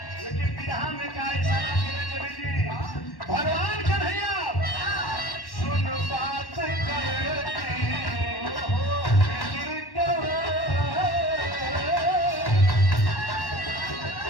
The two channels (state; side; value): late; right; 1.1 ms